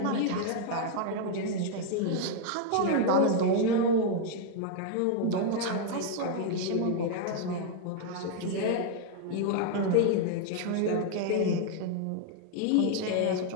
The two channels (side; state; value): both; different; correlation 0.00